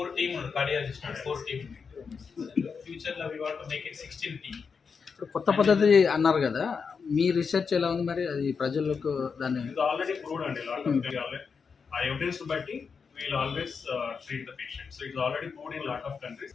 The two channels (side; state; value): right; quieter; 5.7 dB